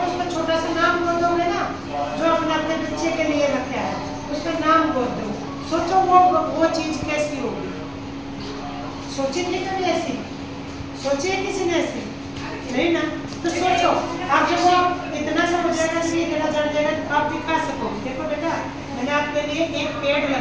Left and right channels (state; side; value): identical; both; correlation 1.00